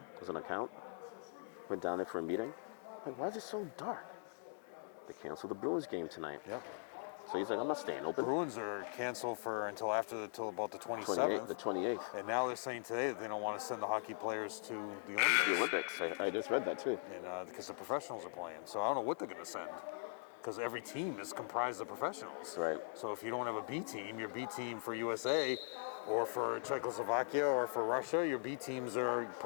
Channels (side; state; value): right; silent; digital silence